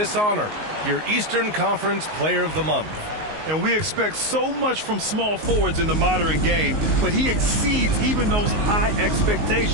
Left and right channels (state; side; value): late; left; 19 ms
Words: honor, your Eastern Conference Player of the Month. And we expect so much from small forwards in the modern game, but he exceeds even those high